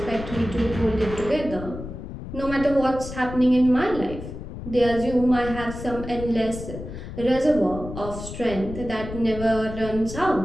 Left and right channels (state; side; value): noise; left; rumble, 10 dB below the sound